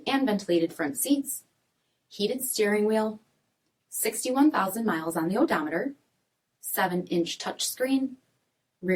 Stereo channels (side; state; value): both; identical; correlation 1.00